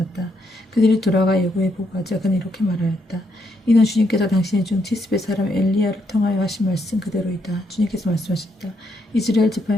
그들이 돌아가 예후에 보고하자 그는 이렇게 말하였다. 이는 주님께서 당신의 중 티스베 사람 엘리야를 통하여 하신 말씀 그대로이다. 주님께서 말씀하셨다. 이스라엘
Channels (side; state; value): both; normal; correlation 0.76